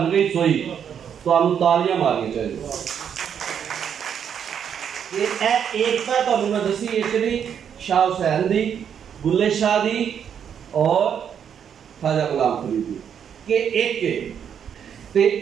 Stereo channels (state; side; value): quieter; left; 8.2 dB